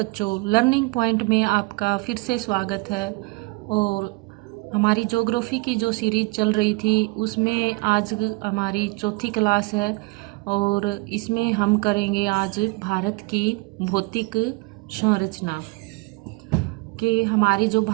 learning point में आपका फिर से स्वागत है। और हमारी ज्योग्राफी की जो सीरीज चल रही थी उसमें आज हमारी चौथी क्लास है। और इसमें हम करेंगे आज भारत की भौतिक संरचना कि हमारी जो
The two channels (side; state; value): left; quieter; 26.5 dB